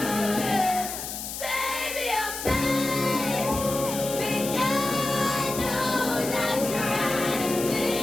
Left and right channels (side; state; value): left; noise; hiss, 7 dB below the sound